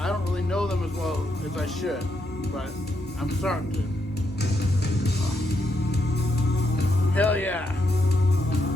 don't really know them as well as I should. But I'm starting to. Hell yeah.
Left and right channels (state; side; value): normal; both; correlation 0.79